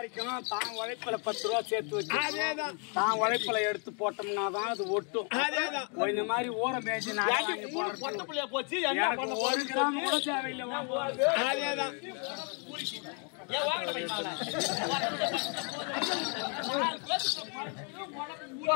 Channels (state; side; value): quieter; right; 37.9 dB